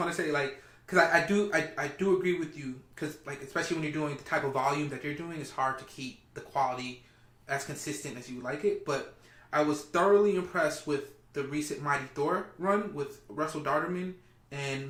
to say, like, because I do agree with you, because, like, especially when you're doing the type of volume that you're doing, it's hard to keep the quality as consistent as you would like it. But I was thoroughly impressed with the recent Mighty Thor run with Russell Darterman and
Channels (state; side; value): identical; both; correlation 1.00